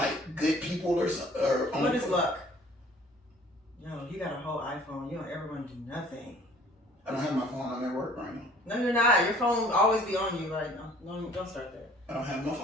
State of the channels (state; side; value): normal; both; correlation 0.53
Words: good people or what is luck? Yo, you got a whole iPhone. You don't ever want to do nothing. I don't have my phone. I'm at work right now. No, you're not. Your phone always be on you. Don't start that. I don't have my